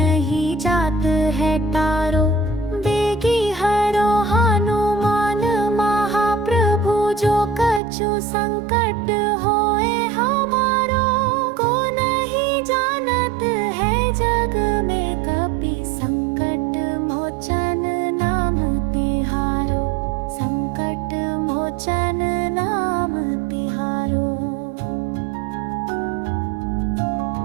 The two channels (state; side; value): drops out; left; at 7.8 s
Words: जात है टारो। बेगी हरो हनुमान महाप्रभु जो कछु संकट होए हमारो। को नहीं जानत है जग में कपि संकट मोचन नाम तिहारो। संकट मोचन नाम तिहारो।